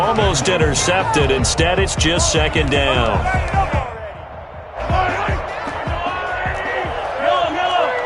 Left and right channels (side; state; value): both; identical; correlation 1.00